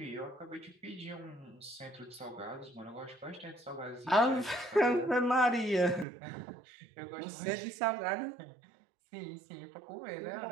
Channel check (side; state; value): left; drops out; at 6.1 s